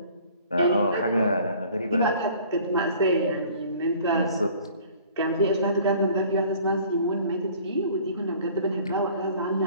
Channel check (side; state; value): both; inverted; correlation -0.51